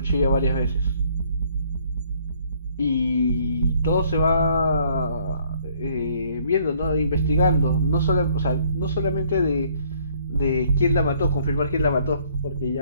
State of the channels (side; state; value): both; inverted; correlation -0.62